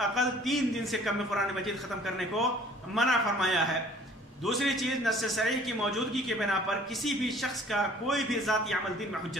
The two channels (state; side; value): normal; both; correlation 0.53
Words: 3 دن سے کم میں قرآن مجید ختم کرنے کو منع فرمایا ہے. دوسری چیز، نص صریح کی موجودگی کے بنا پر کسی بھی شخص کا کوئی بھی ذاتی عمل دین میں